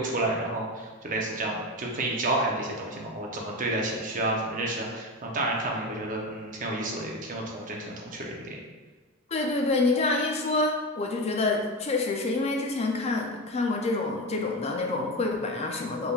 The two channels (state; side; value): normal; both; correlation 0.20